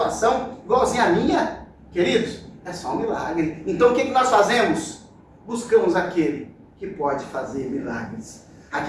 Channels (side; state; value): both; identical; correlation 1.00